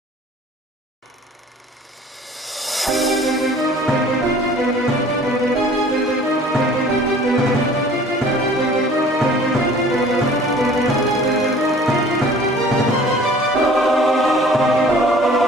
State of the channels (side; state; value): both; normal; correlation 0.49